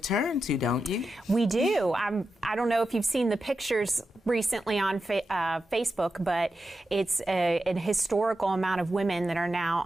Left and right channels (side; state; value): both; normal; correlation 0.89